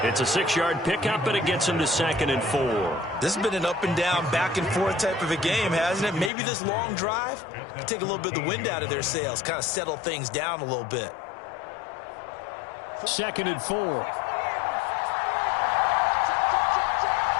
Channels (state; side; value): drops out; right; at 6.3 s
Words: It's a 6-yard pickup, and it gets him to 2nd and 4. This has been an up and down, back and forth type of a game, hasn't it? Maybe this long drive can take a little bit of the wind out of their sails, kind of settle things down a little bit. 2nd and 4.